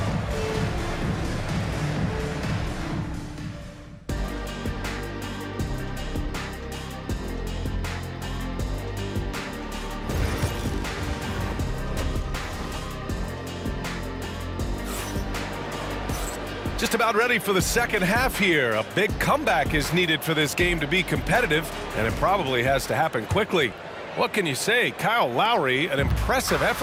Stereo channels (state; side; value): identical; both; correlation 1.00